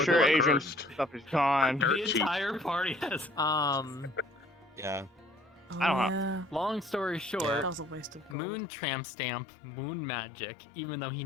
sure, blood Adrian's cursed. stuff is gone. The entire party has. Yeah. I don't know. Long story short, That was a waste of gold. Moon tramp stamp, moon magic, even though he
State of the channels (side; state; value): right; drops out; at 8.3 s